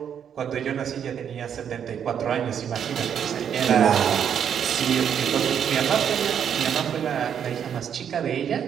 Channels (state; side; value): quieter; left; 8.4 dB